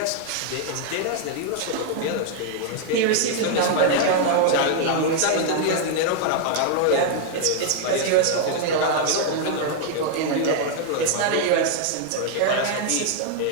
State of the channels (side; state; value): both; different; correlation 0.00